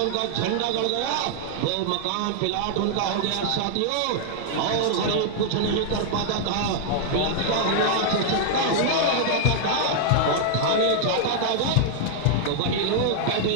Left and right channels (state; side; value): different; both; correlation -0.01